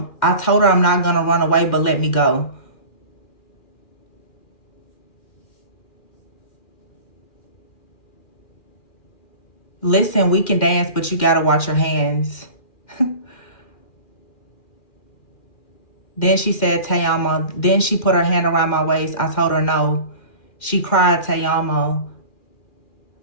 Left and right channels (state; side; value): late; right; 2.1 ms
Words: told her I'm not gonna run away, but let me go. Listen, we can dance, but you gotta watch your hands. Then she said, Tayama. Then she put her hand around my waist. I told her no. She cried, Tayama.